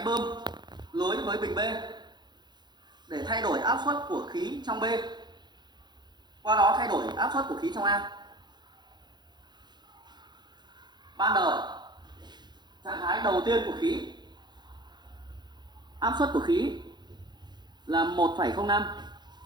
bơm lưới với bình B để thay đổi áp suất của khí trong B, qua đó thay đổi áp suất của khí trong A. Ban đầu, trạng thái đầu tiên của khí, áp suất của khí là 1,05.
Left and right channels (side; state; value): left; late; 0.21 ms